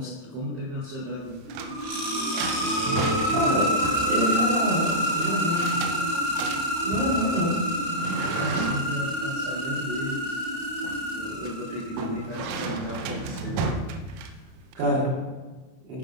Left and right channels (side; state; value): left; late; 31 ms